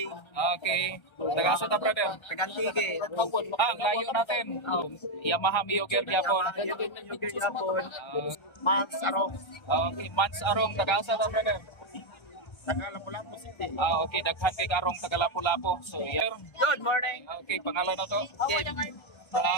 Okay. Taga-asa ta, brother? Tagantige. Ang layo natin. Yamaha Mio Gear gyapon. Mans Arong. Okay, Mans Arong, taga-asa ta, brother? Taga Lapu-Lapu City. Okay, daghan kay Karong taga Lapu-Lapu. So, yeah. Good morning. Okay, pangalan na to?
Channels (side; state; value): right; late; 1.3 ms